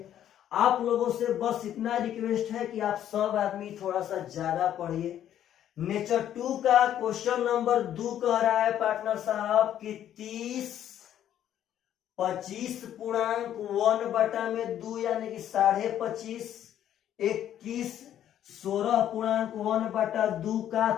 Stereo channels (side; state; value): right; quieter; 10.9 dB